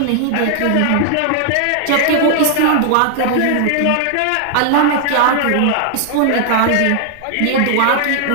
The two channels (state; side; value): different; both; correlation 0.00